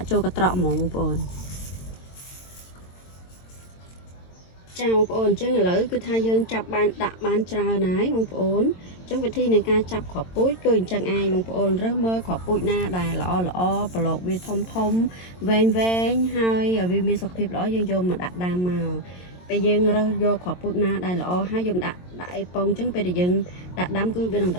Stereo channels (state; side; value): late; right; 22 ms